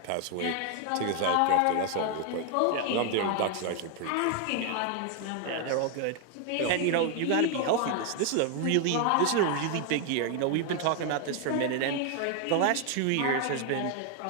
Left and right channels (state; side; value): different; both; correlation 0.01